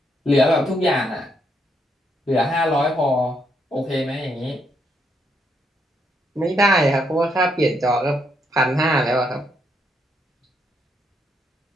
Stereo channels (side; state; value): both; normal; correlation 0.76